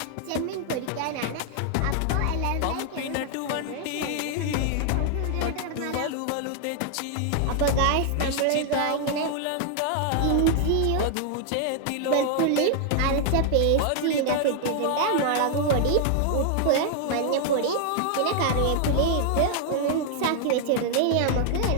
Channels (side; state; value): both; different; correlation 0.00